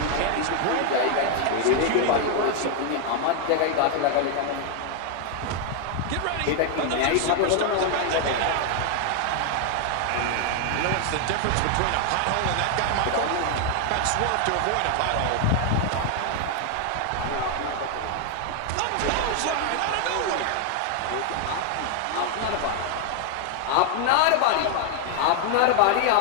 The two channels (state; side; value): different; both; correlation 0.00